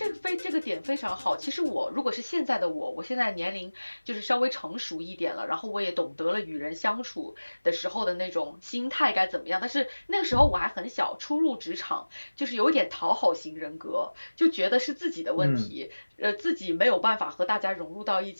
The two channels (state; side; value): inverted; both; correlation -1.00